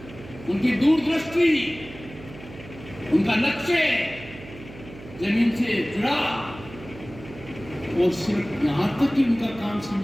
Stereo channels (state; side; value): noise; right; hum, 16 dB below the sound